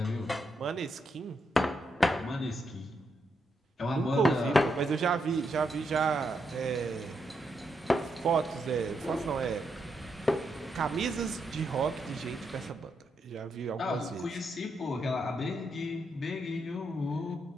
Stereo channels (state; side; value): normal; both; correlation 0.81